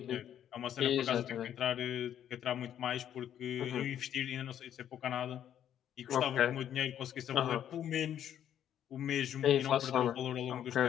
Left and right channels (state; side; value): quieter; right; 10.2 dB